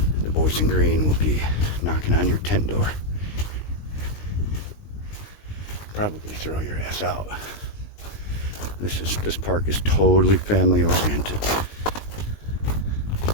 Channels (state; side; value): late; right; 20 ms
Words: the boys in green will be knocking on your tent door. Probably throw your ass out. This park is totally family oriented.